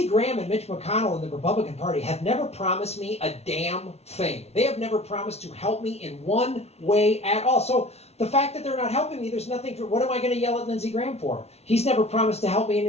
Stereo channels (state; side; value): late; right; 0.31 ms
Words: Graham and Mitch McConnell in the Republican Party have never promised me a damn thing. They have never promised to help me in one way at all. So the fact that they're not helping me, there's nothing for, what am I going to yell at Lindsey Graham for? He's never promised to help me in